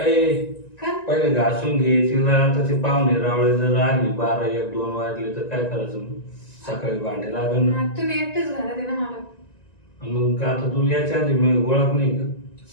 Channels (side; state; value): right; late; 1.9 ms